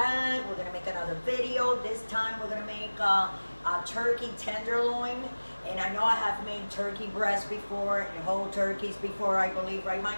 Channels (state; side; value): inverted; both; correlation -1.00